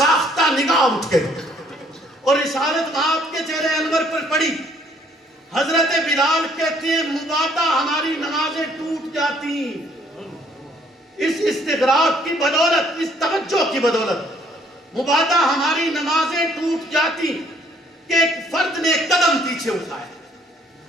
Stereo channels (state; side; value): normal; both; correlation 0.63